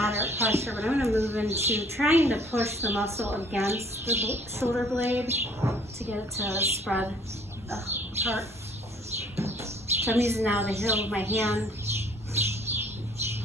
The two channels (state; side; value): normal; both; correlation 0.57